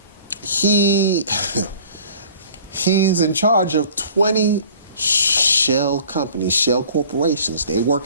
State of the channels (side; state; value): both; inverted; correlation -0.49